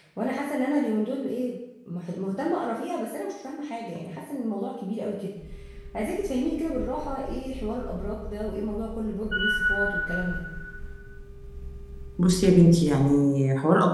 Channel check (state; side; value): identical; both; correlation 1.00